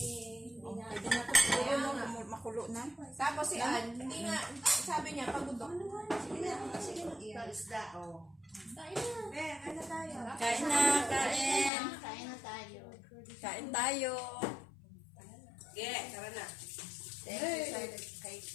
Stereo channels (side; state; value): right; drops out; at 11.7 s